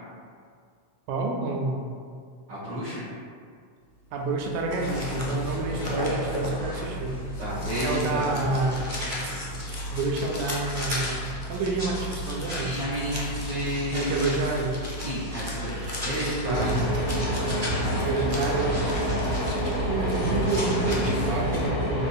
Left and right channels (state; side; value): late; left; 16 ms